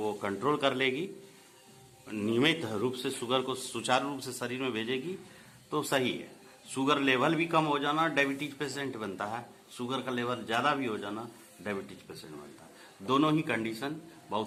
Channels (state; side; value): identical; both; correlation 1.00